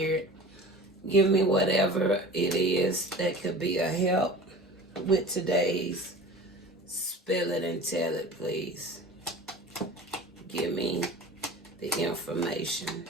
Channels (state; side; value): normal; both; correlation 0.38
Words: Give me whatever it is that could be a help with today's Spill It and Tell It, please. Give me the information